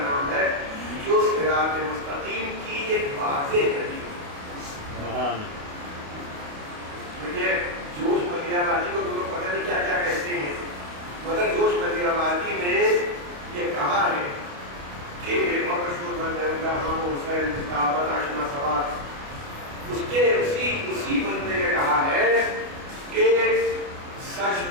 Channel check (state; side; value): late; left; 29 ms